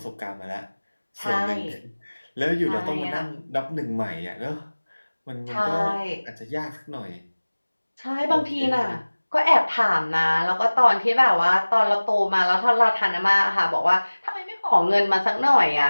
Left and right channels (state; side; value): inverted; both; correlation -1.00